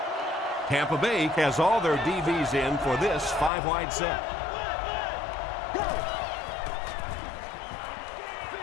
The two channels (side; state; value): right; drops out; at 3.5 s